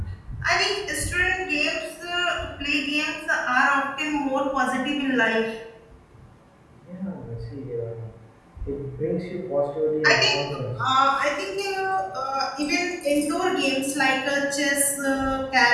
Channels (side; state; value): both; identical; correlation 1.00